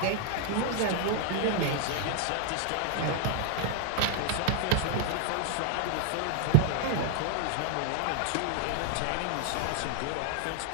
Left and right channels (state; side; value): different; both; correlation 0.00